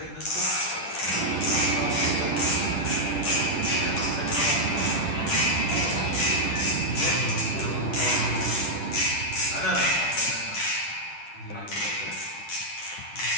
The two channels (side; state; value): right; late; 10 ms